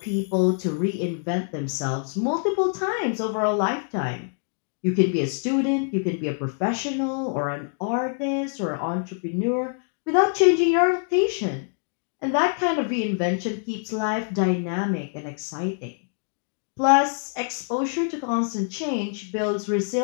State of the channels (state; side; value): silent; right; 62 dB below the other